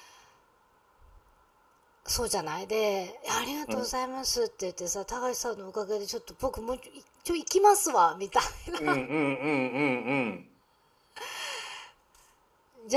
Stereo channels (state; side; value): identical; both; correlation 1.00